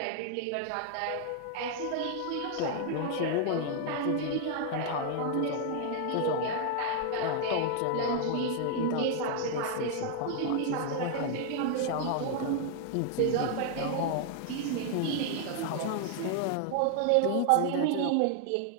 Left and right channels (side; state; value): both; different; correlation 0.00